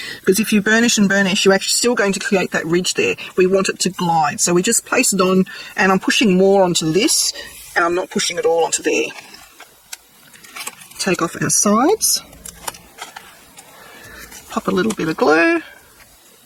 because if you burnish and burnish, you're actually still going to create that ridge there. We want it to glide. So we just place it on, and I'm pushing more onto this, and I'm not pushing it all onto there. Take off our sides. Pop a little bit of glue.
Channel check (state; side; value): identical; both; correlation 1.00